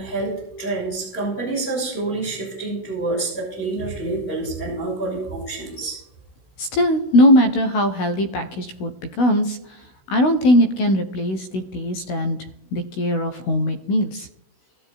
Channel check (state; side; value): late; right; 16 ms